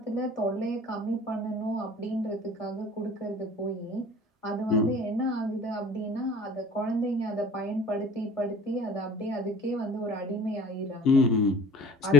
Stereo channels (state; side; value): normal; both; correlation 0.46